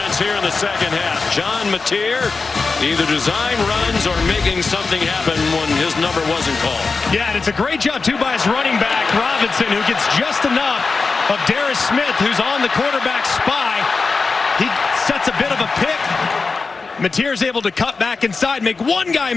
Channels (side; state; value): right; quieter; 4.3 dB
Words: here in the second half. John Mateer either design runs or making something happen when his number wasn't called. Yeah, and it's a great job, too, by his running back, Robinson, who gets just enough of Darius Smith, who's on the quarterback spy. He sets a bit of a pick. Mateer's able to cut back inside, make one guy